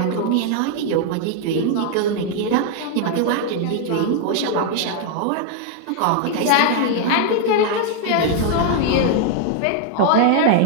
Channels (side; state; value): both; different; correlation 0.00